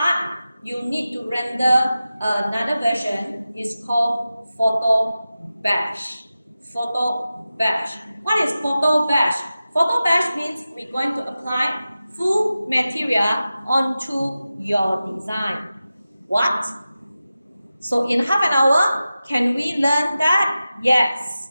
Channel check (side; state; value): both; inverted; correlation -0.94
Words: you need to render another version. It's called photo bash. Photo bash. What is photo bash? Photo bash means we're going to apply full material onto your design. What? So in half an hour, can we learn that?